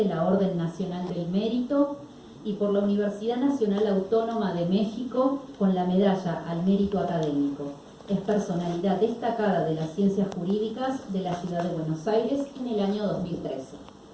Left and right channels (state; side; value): identical; both; correlation 1.00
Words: la Orden Nacional del Mérito y por la Universidad Nacional Autónoma de México con la medalla al mérito académico. Es personalidad destacada de las ciencias jurídicas de la ciudad de Buenos Aires en el año 2013.